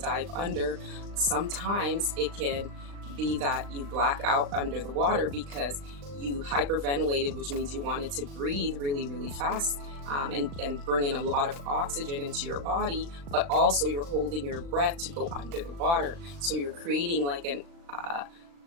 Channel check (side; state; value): left; late; 39 ms